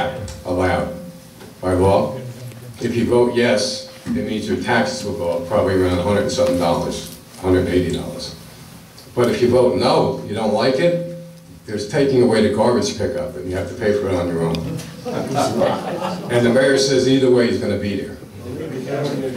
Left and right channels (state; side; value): identical; both; correlation 1.00